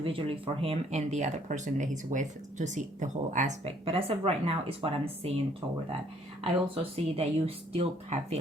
for him and the other person that he's with to see the whole aspect. But as of right now is what I'm seeing toward that. I also see that you still have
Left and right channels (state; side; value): normal; both; correlation 0.63